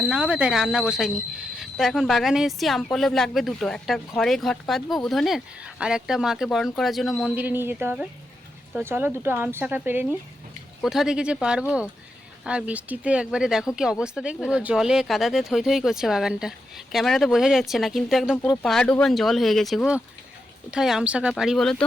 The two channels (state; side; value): normal; both; correlation 0.86